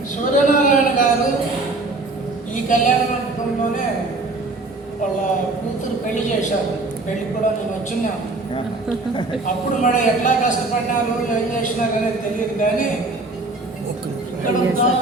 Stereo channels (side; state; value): left; quieter; 3.2 dB